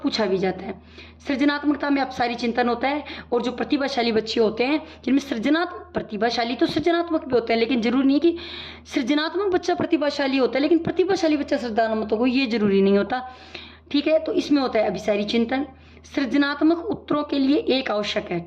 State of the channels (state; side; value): identical; both; correlation 1.00